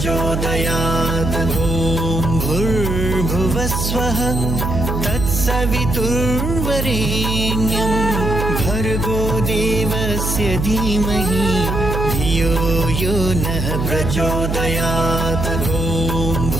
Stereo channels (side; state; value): right; noise; hum, 2 dB below the sound